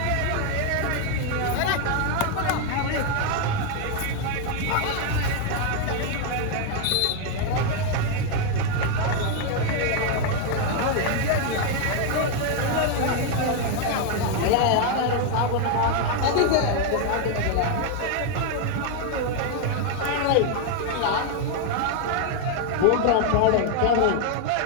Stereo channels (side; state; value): both; different; correlation 0.01